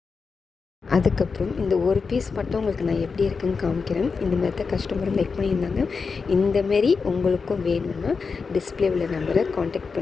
அதுக்கப்புறம் இந்த ஒரு பீஸ் மட்டும் உங்களுக்கு நான் எப்படி இருக்குதுன்னு காமிக்கிறேன். இந்த மாதிரி தான் கஸ்டமரும் லைக் பண்ணியிருந்தாங்க. இந்தமாரி உங்களுக்கும் வேணும்னா டிஸ்பிளே உள்ள நம்பரை காண்டாக்ட்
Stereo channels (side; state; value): right; quieter; 5.0 dB